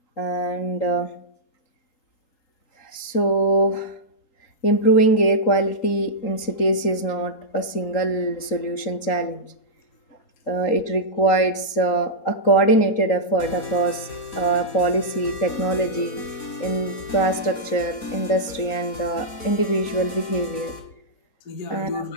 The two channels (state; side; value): late; right; 3.9 ms